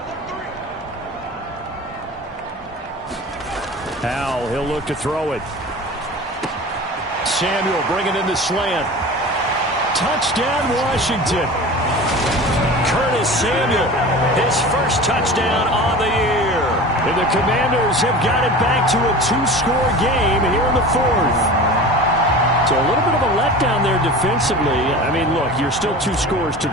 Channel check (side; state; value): both; normal; correlation 0.35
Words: Howell, he'll look to throw it. Samuel bringing in the slant. Touchdown, Washington. Curtis Samuel, his first touchdown on the year. And the Commanders have got it back to a 2-score game here in the 4th. So a little bit of a letdown there defensively. I mean, look, you're still 2 scores to